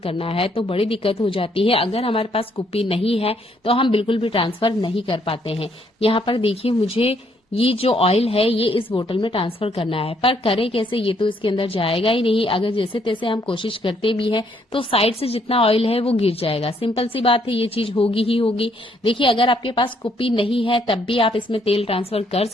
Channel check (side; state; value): both; normal; correlation 0.70